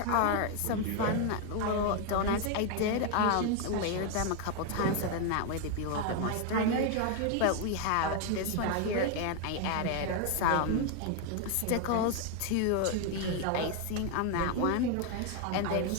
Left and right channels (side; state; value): both; different; correlation 0.01